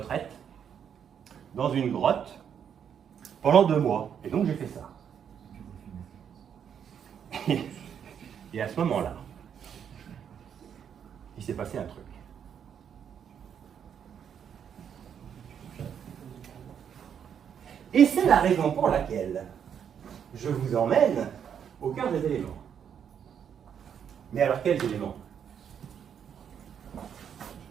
dans une grotte pendant 2 mois. Et donc, j'ai fait ça. Et à ce moment-là, il s'est passé un truc. Et c'est la raison pour laquelle je vous emmène au cœur des éléments. Mais alors, quels éléments?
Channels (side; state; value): left; quieter; 8.2 dB